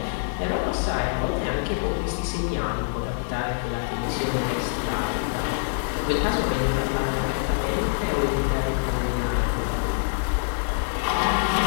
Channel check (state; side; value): silent; right; 62 dB below the other